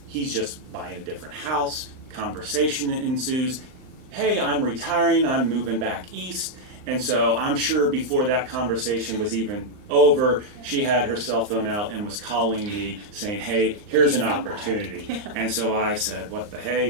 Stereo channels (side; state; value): left; late; 39 ms